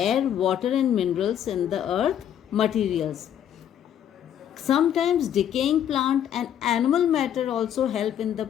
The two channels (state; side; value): quieter; right; 9.9 dB